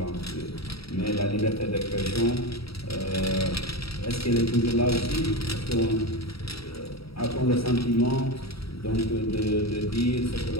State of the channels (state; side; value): late; right; 0.76 ms